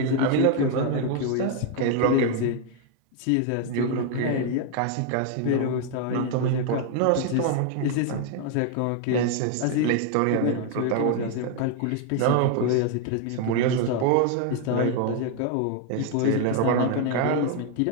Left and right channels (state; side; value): different; both; correlation 0.00